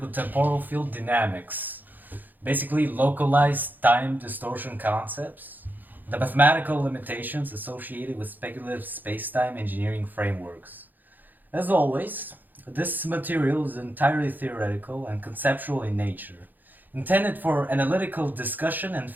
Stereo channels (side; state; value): left; late; 0.086 ms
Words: temporal field dynamics, basically localized time distortion concepts, the mathematical limitations associated with speculative spacetime engineering frameworks. As always, this material is entirely theoretical and conceptual in nature, intended for analytical discussion and